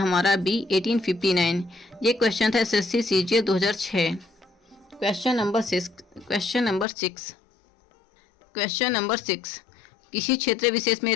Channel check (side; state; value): right; drops out; at 6.9 s